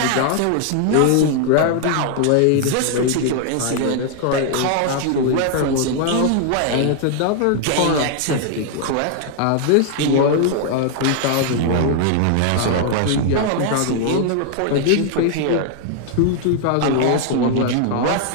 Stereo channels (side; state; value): both; different; correlation 0.00